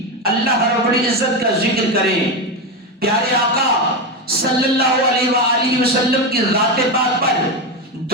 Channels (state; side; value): normal; both; correlation 0.13